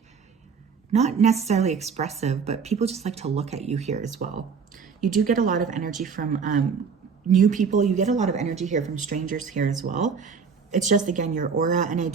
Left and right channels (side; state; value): left; quieter; 5.9 dB